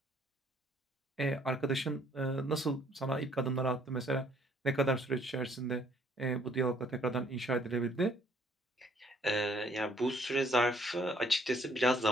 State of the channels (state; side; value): normal; both; correlation 0.63